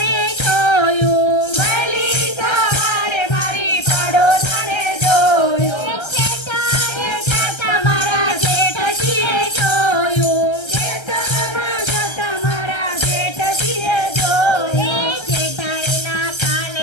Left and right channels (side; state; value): right; late; 1.3 ms